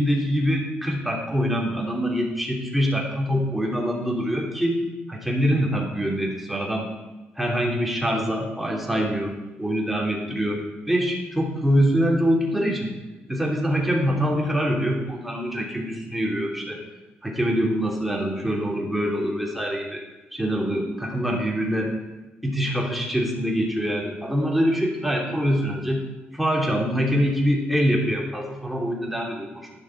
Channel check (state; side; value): normal; both; correlation 0.83